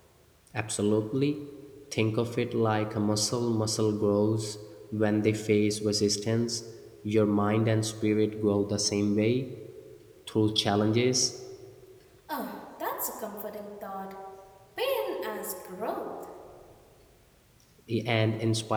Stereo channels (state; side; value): identical; both; correlation 1.00